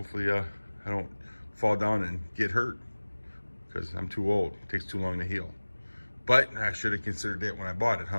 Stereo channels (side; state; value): both; inverted; correlation -1.00